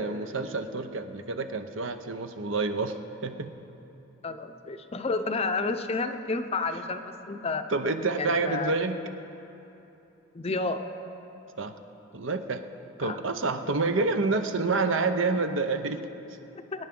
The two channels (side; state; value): both; normal; correlation -0.03